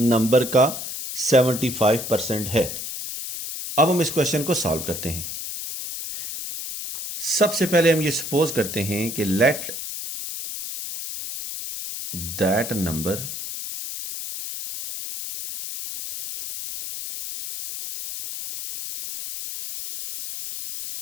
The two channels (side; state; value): left; noise; hiss, 7 dB below the sound